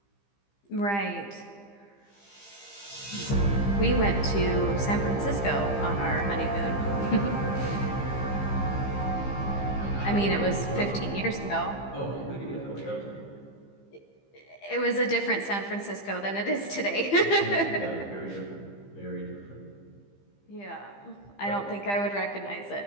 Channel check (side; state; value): right; late; 15 ms